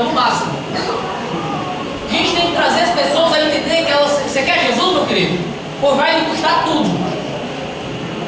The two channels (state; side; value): identical; both; correlation 1.00